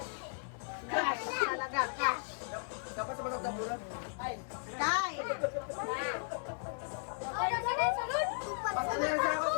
Cash talaga, cash. Dapat sa batang dambulan. Kay. Basta na yung sakot,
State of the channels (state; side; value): silent; right; 54 dB below the other